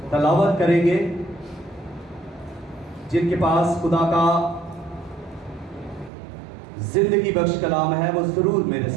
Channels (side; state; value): left; drops out; at 6.1 s